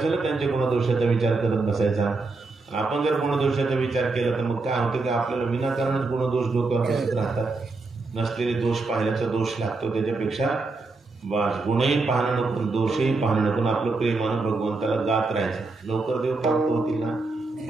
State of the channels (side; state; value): left; quieter; 3.6 dB